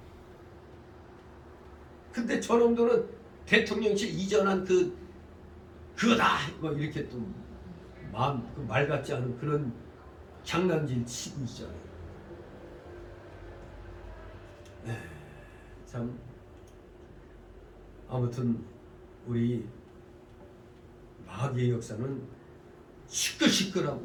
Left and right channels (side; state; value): both; identical; correlation 1.00